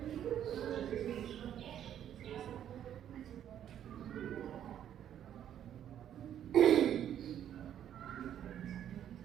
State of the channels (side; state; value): left; quieter; 10.2 dB